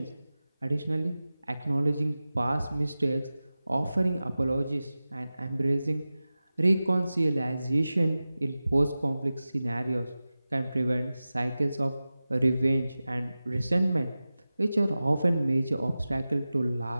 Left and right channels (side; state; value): both; inverted; correlation -0.96